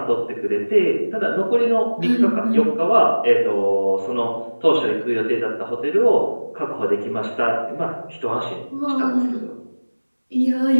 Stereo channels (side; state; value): both; inverted; correlation -1.00